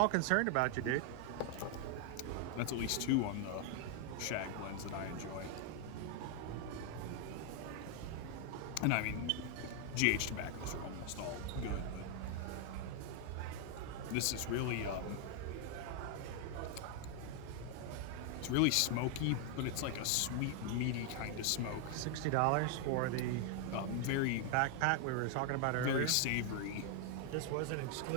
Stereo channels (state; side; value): different; both; correlation 0.00